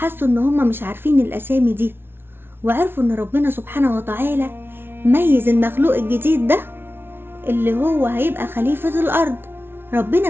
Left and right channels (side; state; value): left; late; 0.11 ms